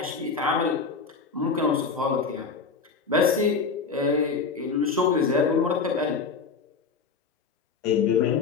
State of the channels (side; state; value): right; quieter; 5.0 dB